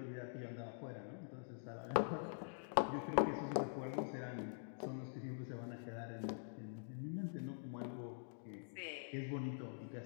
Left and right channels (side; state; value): right; silent; digital silence